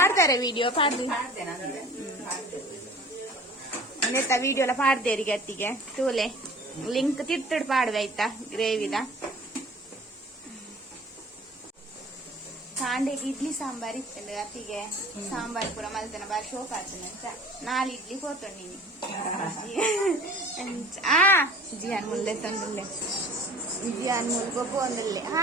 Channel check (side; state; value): both; normal; correlation 0.45